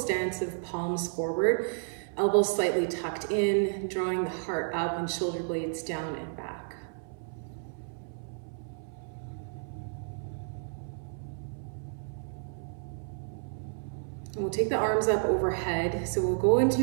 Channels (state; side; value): silent; left; 57 dB below the other